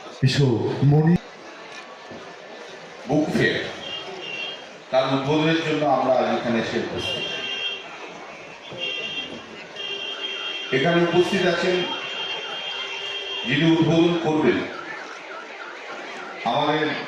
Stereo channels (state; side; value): identical; both; correlation 1.00